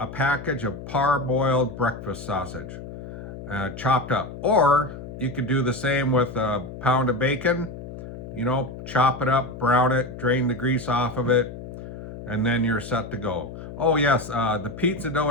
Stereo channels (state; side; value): noise; left; hum, 11 dB below the sound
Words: package of parboiled breakfast sausage, chopped up. Or you could do the same with a pound of bacon. You know, chop it up, brown it, drain the grease off of it, and then you're set to go. Oh yes, the pizza dough